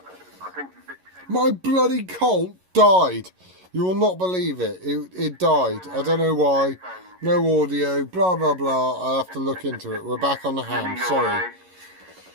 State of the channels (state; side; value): late; left; 11 ms